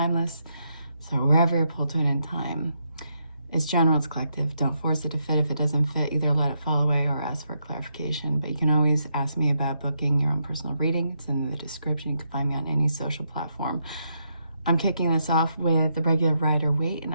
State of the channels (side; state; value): both; inverted; correlation -0.80